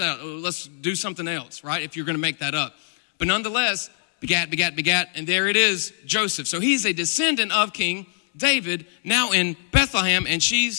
out. Let's do something else, right, if you're going to make that up. But nonetheless, begat, and there it is, Joseph. So he's a descendant of King David, now in Bethlehem, and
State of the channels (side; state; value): right; silent; 63 dB below the other